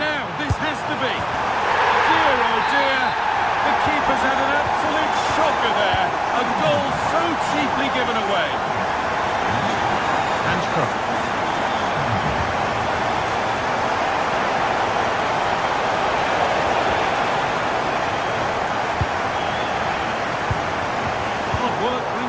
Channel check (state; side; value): identical; both; correlation 1.00